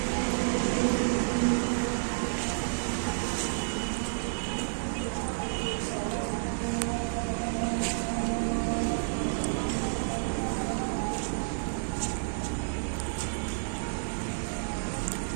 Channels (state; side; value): silent; left; digital silence